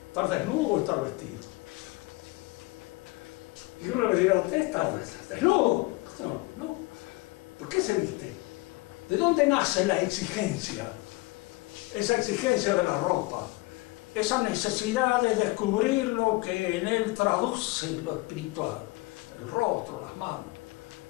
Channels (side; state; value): right; quieter; 22.8 dB